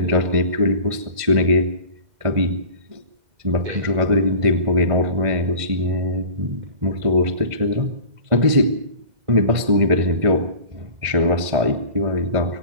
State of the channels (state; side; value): late; left; 1.5 ms